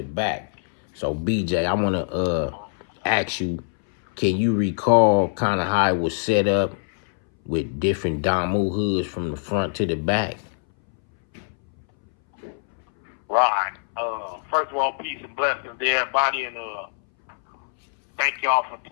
back. So BJ, I want to ask you, can you recall kind of how it was set up with different Damu hoods from the front to the back? Right. First of all, peace and blessings to everybody, and thank y'all for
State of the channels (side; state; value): right; silent; 62 dB below the other